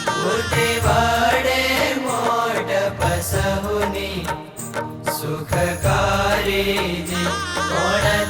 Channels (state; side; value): identical; both; correlation 1.00